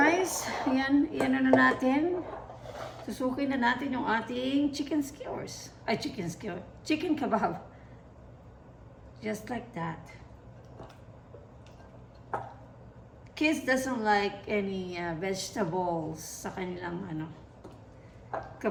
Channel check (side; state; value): both; identical; correlation 1.00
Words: Yan na natin. Susukin na natin yung ating chicken skewers. Ay, chicken kebab. Just like that. Kids doesn't like any vegetables sa kanilang